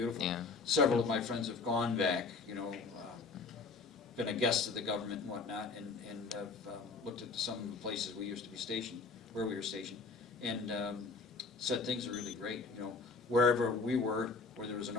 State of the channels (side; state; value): right; quieter; 4.2 dB